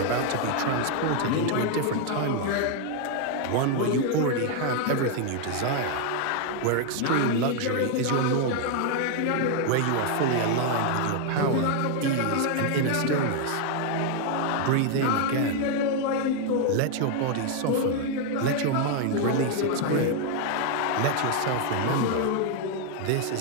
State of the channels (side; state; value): both; different; correlation 0.00